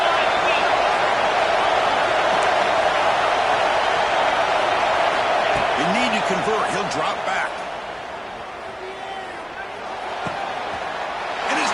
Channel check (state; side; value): identical; both; correlation 1.00